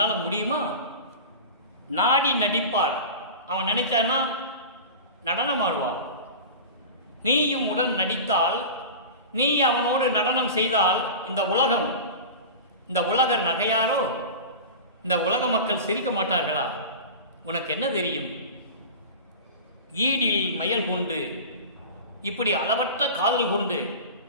முடியுமா? நாடி நடிப்பார். அவன் நினைச்சானா நடனம் ஆடுவான். நீயும் உடன் நடித்தால், நீ அவனோடு நடனம் செய்தால் இந்த உலகர் நகையாரோ? இந்த உலக மக்கள் சிரிக்க மாட்டார்களா? உனக்கு என்ன தெரியும்? ஈடில் மயல் கொண்டு, இப்படி அளவற்ற காதல் கொண்டு,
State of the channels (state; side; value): inverted; both; correlation -0.31